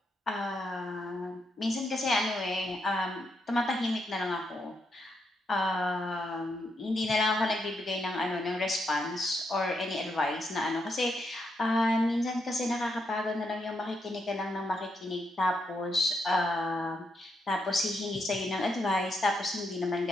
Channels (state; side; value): normal; both; correlation 0.80